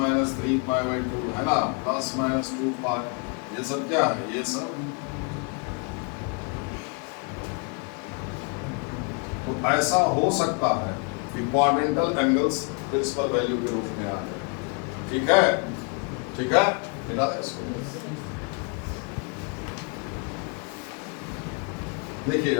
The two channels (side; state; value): right; quieter; 34.6 dB